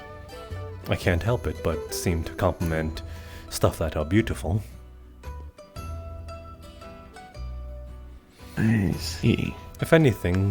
I can't help it but seem to compliment stuff that are beautiful. I see. If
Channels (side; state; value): both; identical; correlation 1.00